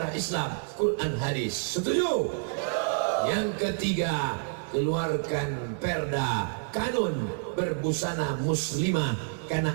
Islam, Quran, hadis. Setuju? Yang ketiga, keluarkan perda kanun berbusana muslimah, karena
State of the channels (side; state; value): left; silent; digital silence